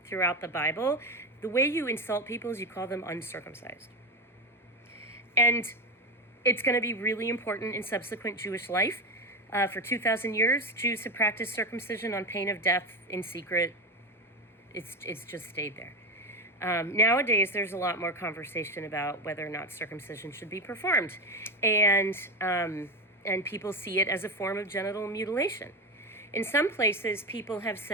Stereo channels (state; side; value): normal; both; correlation 0.17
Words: throughout the Bible. The way you insult people is you call them uncircumcised. And it's going to be really important in subsequent Jewish life. For 2,000 years, Jews have practiced circumcision on pain of death in secret. It's just stayed there. Nowadays, there's a lot more conversation about whether or not circumcision should be performed. And people see it as a form of genital mutilation. In some places, people have